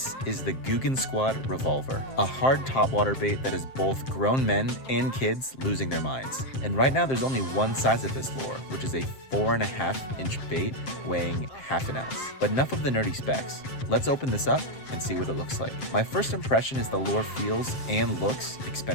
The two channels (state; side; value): late; right; 7.6 ms